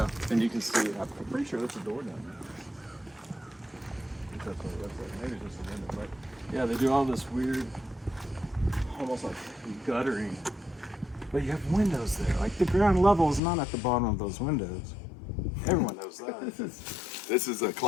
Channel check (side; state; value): right; drops out; at 13.4 s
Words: and you can see, I'm pretty sure there's a door down there. Maybe it's just a window, but yeah, they do all this weird, almost like guttering. But you have windows there. Like the ground level is not at the bottom of those windows. Everyone knows that. This is a